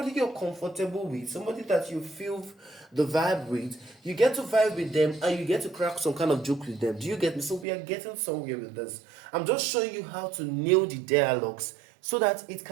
you're comfortable with, somebody that you feel the vibe with, you get to vibe with them and you get to crack some kind of joke with them. Do you get me? So we are getting somewhere with this. I'm just showing you how to nail the dialogues so that it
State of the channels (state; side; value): drops out; left; at 7.7 s